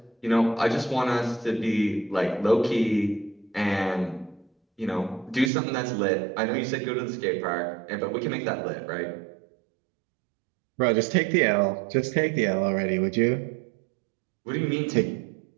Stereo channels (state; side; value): drops out; left; at 5.5 s